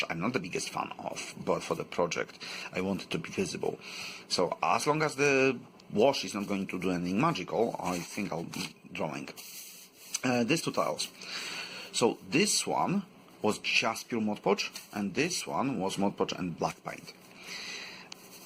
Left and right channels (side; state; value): both; identical; correlation 1.00